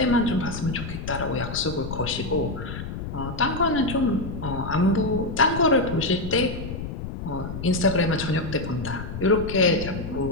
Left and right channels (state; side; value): noise; left; rumble, 7 dB below the sound